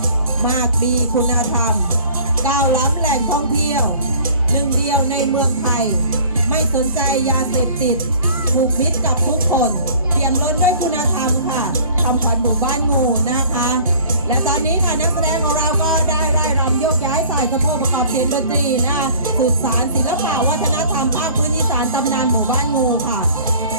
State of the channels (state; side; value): inverted; both; correlation -0.49